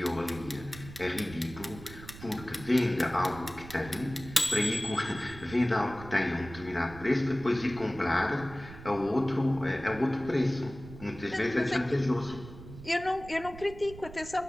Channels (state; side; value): noise; right; rumble, 15 dB below the sound